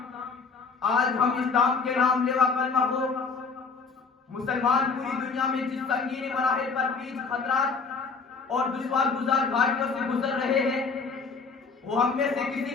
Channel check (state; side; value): quieter; right; 4.9 dB